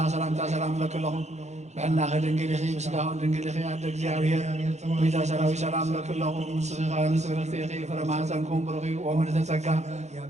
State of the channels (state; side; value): late; left; 0.33 ms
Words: سلام لك لهم بحنا خد انجليخي بسلاهم انجليخي عندك زيارير ويتا سراوي سلام لك لهم صغيرا نسبرتيخي فرما سنكون برغي ومن تتسكى